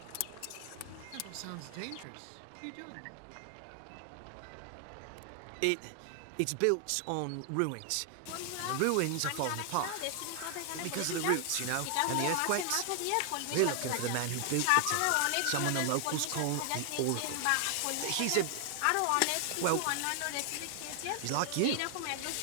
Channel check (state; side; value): different; both; correlation 0.00